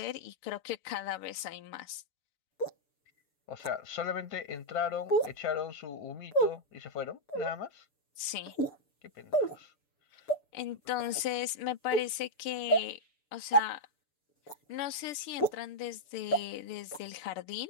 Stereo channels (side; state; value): right; late; 6.8 ms